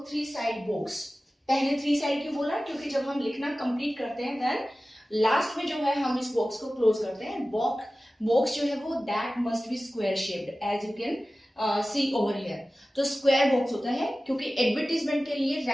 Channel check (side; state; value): both; normal; correlation 0.96